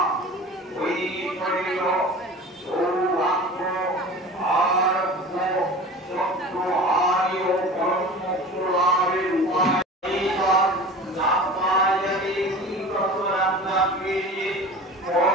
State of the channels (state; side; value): normal; both; correlation 0.37